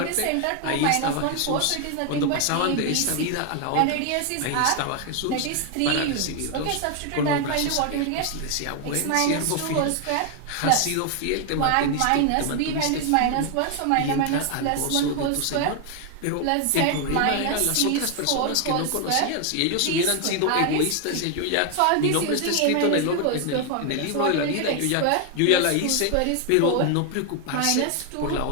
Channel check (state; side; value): different; both; correlation 0.01